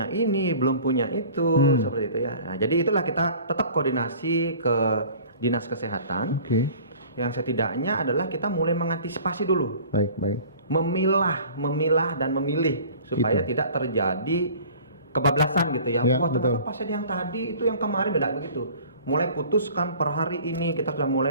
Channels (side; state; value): both; inverted; correlation -0.46